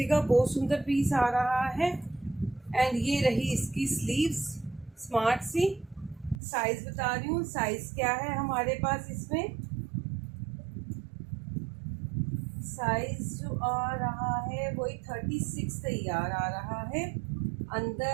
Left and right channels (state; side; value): drops out; left; at 6.4 s